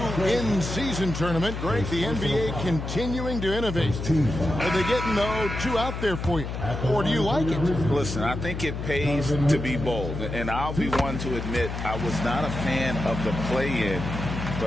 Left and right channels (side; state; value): left; noise; hum, 5 dB below the sound